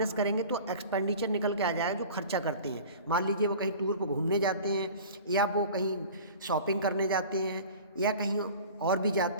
करेंगे तो एक्सपेंडिचर निकल के आ जाएगा जो खर्चा करते हैं। मान लीजिए वो कहीं टूर पर घूमने जाते हैं, या वो कहीं शॉपिंग करने जाते हैं, या कहीं और भी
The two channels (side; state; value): both; inverted; correlation -0.41